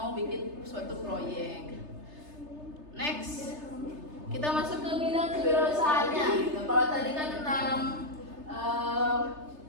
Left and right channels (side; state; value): left; late; 3.3 ms